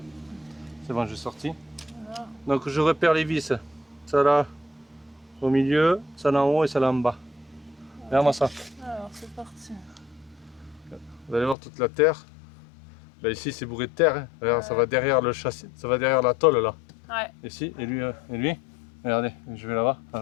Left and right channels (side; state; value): right; drops out; at 11.6 s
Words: C'est bon, j'ai sorti. Voilà. Donc je repère les vis. Ça là, au milieu, ça là en haut et ça là en bas. Regarde-moi ça. Alors, c'est parti. Vous allez voir toute la terre. Là ici c'est bourré de terre. Hein. Regarde, ça va derrière le châssis, ça va derrière la tôle là. Ouais. Ici et lui. Regardez, je vais là-bas, à